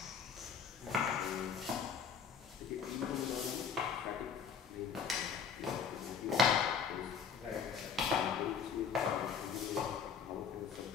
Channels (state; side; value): quieter; right; 6.6 dB